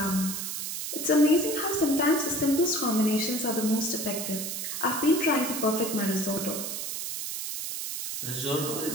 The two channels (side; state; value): right; noise; hiss, 4 dB below the sound